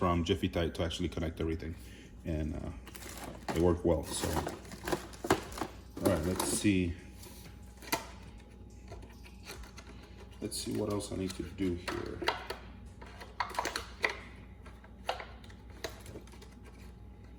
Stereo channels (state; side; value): identical; both; correlation 1.00